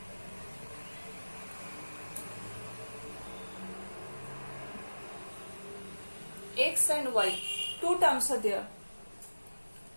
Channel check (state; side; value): inverted; both; correlation -1.00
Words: X and y, 2 terms are there.